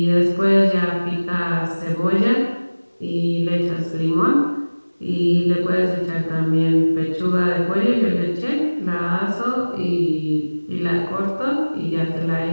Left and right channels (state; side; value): inverted; both; correlation -1.00